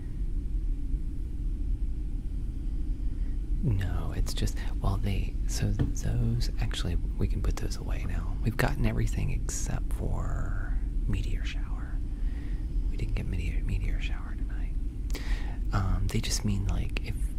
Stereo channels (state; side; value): identical; both; correlation 1.00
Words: No, it's just, well, so those, actually, we can put those away now. We've gotten everything except for Meteor Shower. We didn't get Meteor Shower tonight. They just mean, like,